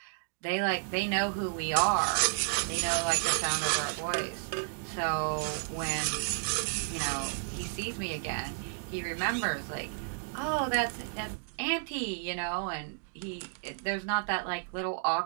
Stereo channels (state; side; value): silent; left; digital silence